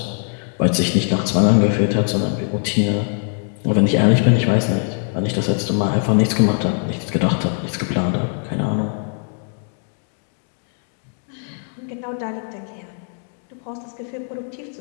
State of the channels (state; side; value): silent; right; 58 dB below the other